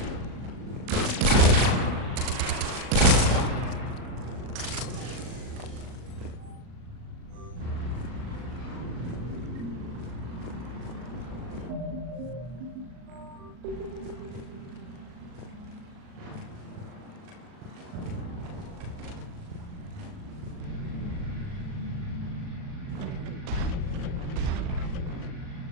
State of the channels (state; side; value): late; left; 39 ms